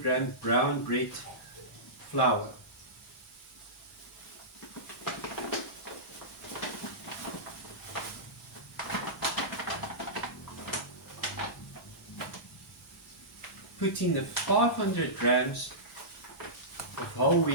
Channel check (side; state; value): both; normal; correlation -0.17